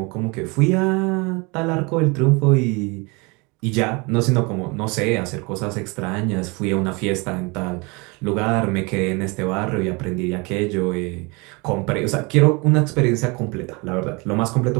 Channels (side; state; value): left; quieter; 27.9 dB